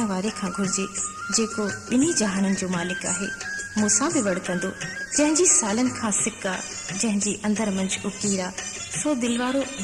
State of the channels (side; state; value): both; identical; correlation 1.00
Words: वारे खां घुरिजे जेको ॿिन्ही जहाननि जो मालिक आहे। मूंसां बि वड़कंदो जंहिंजी सालनि खां सिका, जंहिंजी अंदर मंझि उकीरा, सो दिलवारो